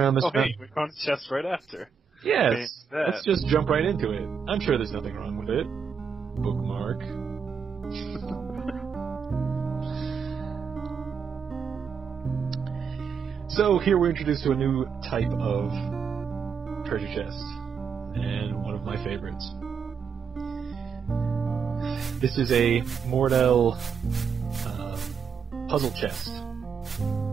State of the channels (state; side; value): quieter; left; 6.1 dB